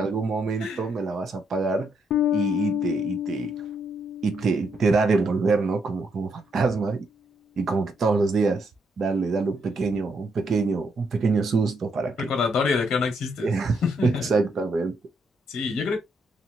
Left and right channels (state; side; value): normal; both; correlation 0.76